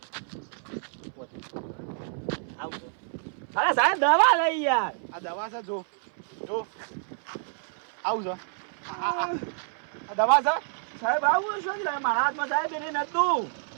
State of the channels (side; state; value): left; silent; 59 dB below the other